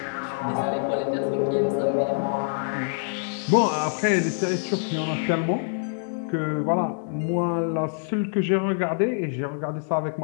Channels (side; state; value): right; silent; digital silence